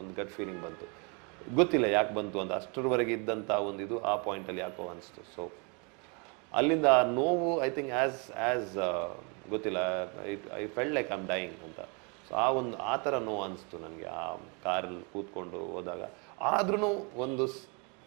ಗಟ್ ಫೀಲಿಂಗ್ ಬಂತು, ಗೊತ್ತಿಲ್ಲ ಯಾಕೆ ಬಂತು ಅಂತ. ಅಷ್ಟರವರೆಗೆ ಇದ್ದಂಥ ಒಂದು ಇದು ಆ ಪಾಯಿಂಟಲ್ಲಿ ಯಾಕೋ ಅನಿಸ್ತು. ಸೊ ಅಲ್ಲಿಂದ ಆ ನೋವು ಐ ಥಿಂಕ್ ಆ್ಯಸ್ ಗೊತ್ತಿಲ್ಲ, I felt like I am dying ಅಂತ. ಸೊ ಆ ಥರ ನೋವು ಅನಿಸ್ತು ನನಗೆ ಆ ಕಾರಲ್ಲಿ ಕೂತ್ಕೊಂಡು ಹೋದಾಗ. ಆದ್ರೂ ಒಂದು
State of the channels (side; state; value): left; quieter; 33.5 dB